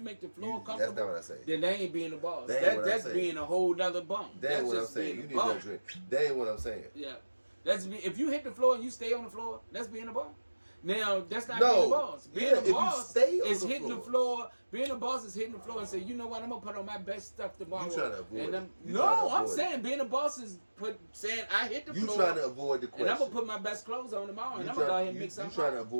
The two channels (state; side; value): inverted; both; correlation -1.00